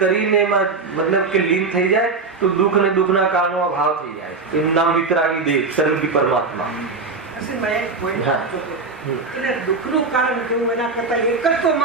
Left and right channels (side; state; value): left; quieter; 4.2 dB